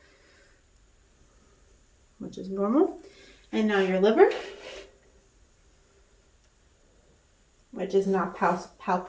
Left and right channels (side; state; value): both; identical; correlation 1.00